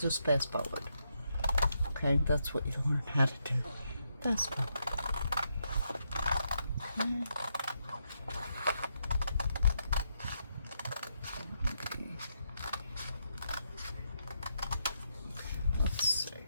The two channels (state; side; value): inverted; both; correlation -0.80